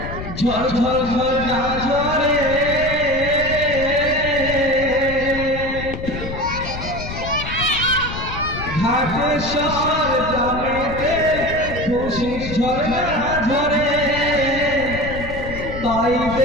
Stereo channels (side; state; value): left; noise; rumble, 8 dB below the sound